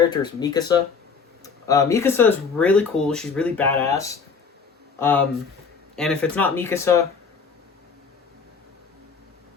is Mikasa. Mikasa is really cool. She's really badass. And if it's not Mikasa,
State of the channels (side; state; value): right; quieter; 5.5 dB